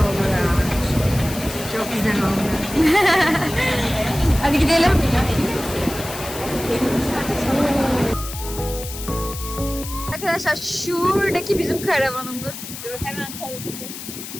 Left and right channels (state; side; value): noise; left; hiss, 10 dB below the sound